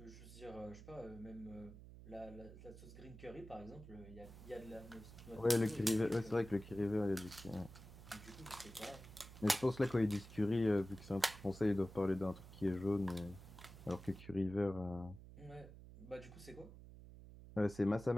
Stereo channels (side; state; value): right; noise; hum, 16 dB below the sound